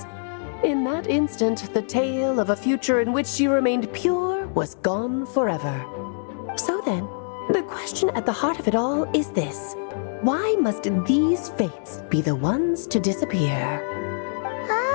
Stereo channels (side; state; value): right; silent; 62 dB below the other